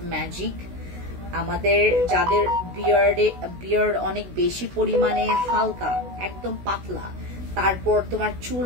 ম্যাজিক। আমাদের যাদের বিয়ার্ড অনেক বেশি পরিমাণে হালকা, একদম পাতলা, তারপর তোমার চুল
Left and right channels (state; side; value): late; left; 16 ms